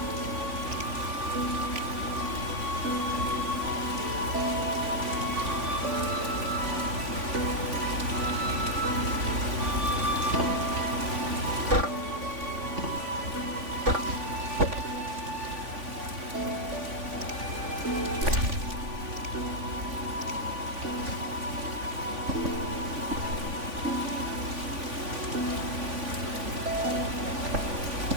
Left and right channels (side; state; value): left; late; 3.5 ms